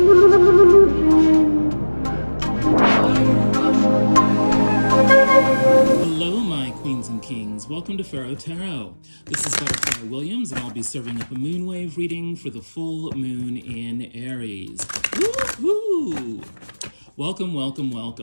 my queens and kings. Welcome to Pharaoh Tarot. This is Butterfly Williams, and I'll be serving up a moonwave reading for the full moon in Aries. Woohoo! Welcome, welcome,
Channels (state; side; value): inverted; both; correlation -1.00